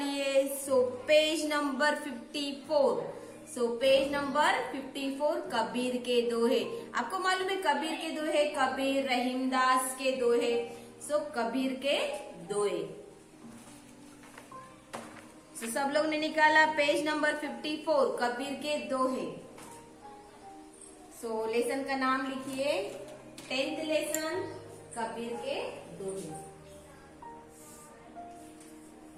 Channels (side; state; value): both; identical; correlation 1.00